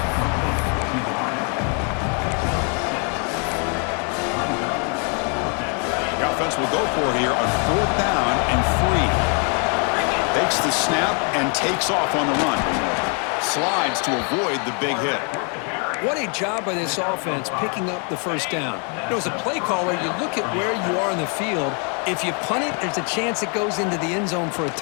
The offense will go for here on 4th down and 3. Takes the snap and takes off on the run. Slides to avoid the big hit. What a job by this offense picking up the first down. You know, as a play caller, you look at where you are in the field. If you punt it, there's a chance it goes into the end zone for a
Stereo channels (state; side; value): quieter; right; 38.3 dB